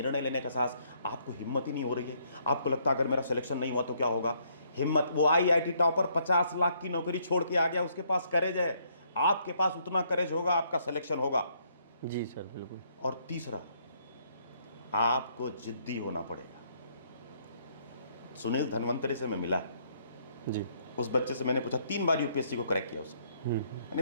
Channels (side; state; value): both; inverted; correlation -0.69